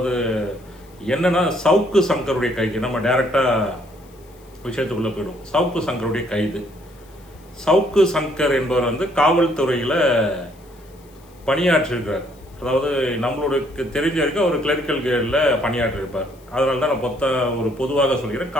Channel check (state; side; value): noise; left; hiss, 29 dB below the sound